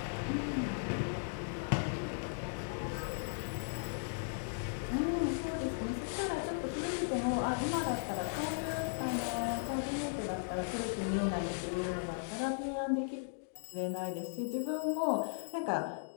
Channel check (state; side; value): silent; right; digital silence